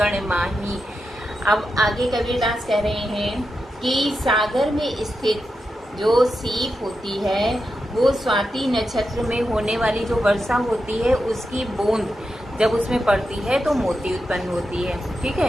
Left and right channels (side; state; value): both; normal; correlation 0.88